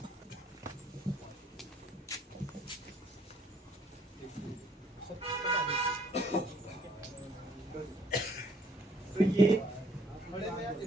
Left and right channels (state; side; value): normal; both; correlation 0.63